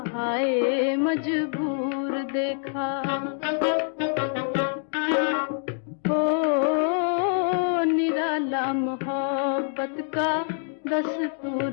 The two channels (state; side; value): silent; right; 57 dB below the other